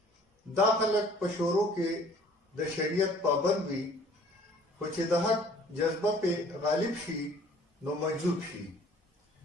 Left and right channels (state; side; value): normal; both; correlation 0.54